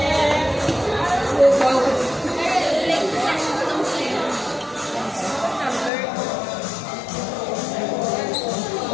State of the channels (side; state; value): right; drops out; at 5.9 s